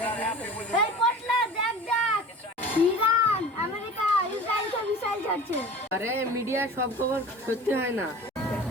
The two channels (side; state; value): both; normal; correlation 0.40